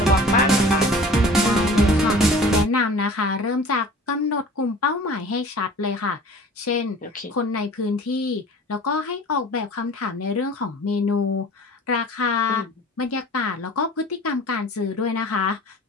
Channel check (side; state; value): both; normal; correlation 0.43